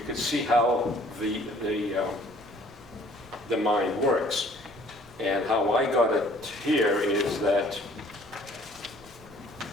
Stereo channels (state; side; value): noise; right; rumble, 26 dB below the sound